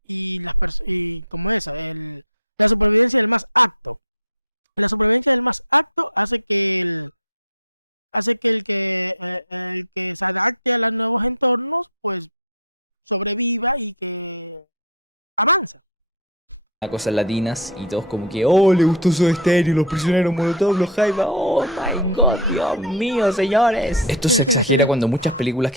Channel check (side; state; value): both; normal; correlation -0.04